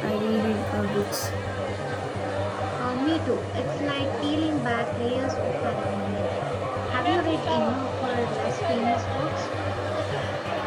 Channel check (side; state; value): both; identical; correlation 1.00